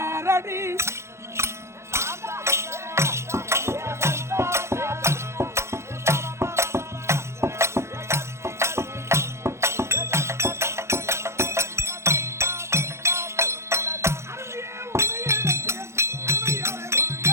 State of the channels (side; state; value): left; late; 0.13 ms